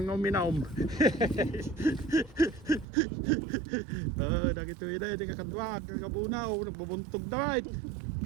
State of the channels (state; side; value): drops out; left; at 2.9 s